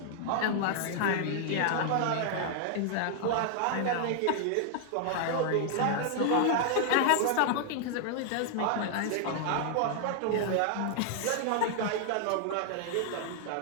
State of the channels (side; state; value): both; different; correlation 0.00